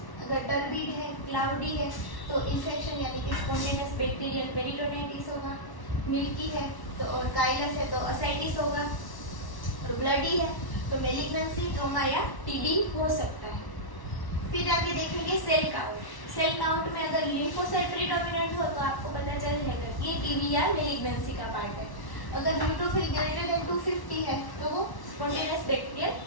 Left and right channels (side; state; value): right; late; 1.1 ms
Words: अगर टर्बिड है, क्लाउडी है तो इन्फेक्शन यानी कि स्पॉन्टेनियस बैक्टीरियल पेरिटोनाइटिस होगा। मिल्की है तो और काइलस है तो असाइटिस होगा। और ब्लडी है तो मेलिग्नेंसी, ट्रोमा या टीबी हो सकता है। फिर आगे देखेंगे सेल काउंट। सेल काउंट में अगर लिम्फोसाइट प्रीडोमिनेंट हो तो आपको पता चल जाएगा कि ये टीबी या मेलिग्नेंसी का पार्ट है। अगर न्यूट्रोफिल ग्रेटर देन 250 है तो वो स्पॉन्टेनियस बैक्टीरियल